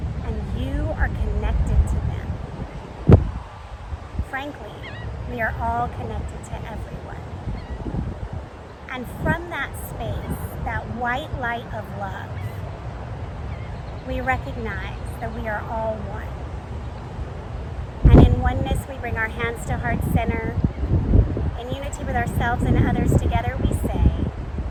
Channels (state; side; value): identical; both; correlation 1.00